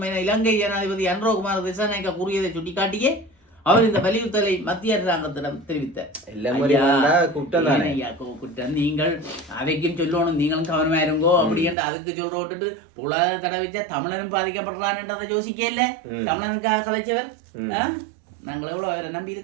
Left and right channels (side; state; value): left; drops out; at 11.8 s